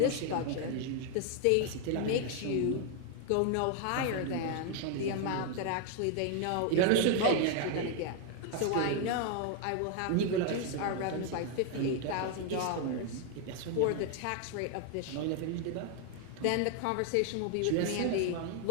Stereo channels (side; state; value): both; different; correlation 0.00